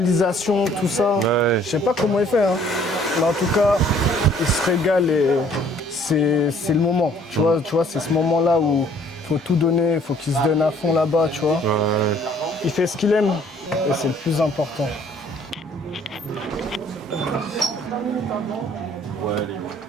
tout ça. Ouais. Je sais pas comment il fait, hein. Mais en tout cas, il se régale et c'est le moment. Tu vois, c'est ce moment-là où il faut tout donner, il faut qu'il se donne à fond là-bas, tu vois. Ouais. Il fait ce qu'il aime et c'est le plus important.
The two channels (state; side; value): normal; both; correlation 0.59